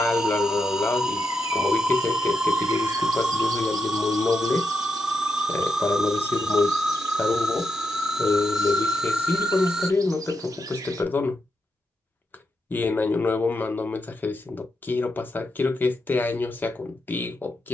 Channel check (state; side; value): normal; both; correlation 0.85